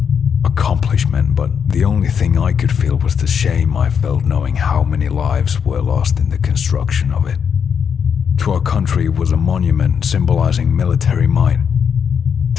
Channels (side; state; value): right; quieter; 7.2 dB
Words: accomplishment, but the only thing I could feel was the shame I felt knowing how many lives were lost in the construction of it. To our country, it was a monument symbolizing military might.